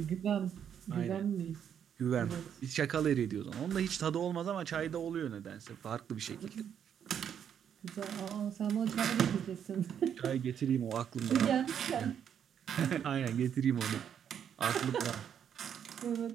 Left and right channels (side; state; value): left; quieter; 8.6 dB